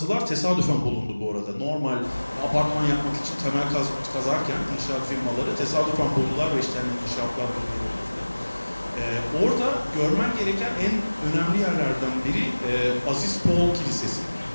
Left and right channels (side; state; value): both; inverted; correlation -1.00